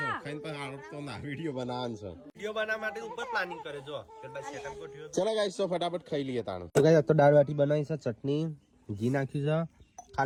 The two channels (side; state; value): both; identical; correlation 1.00